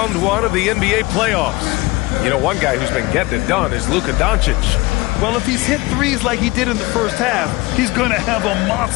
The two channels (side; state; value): right; quieter; 21.9 dB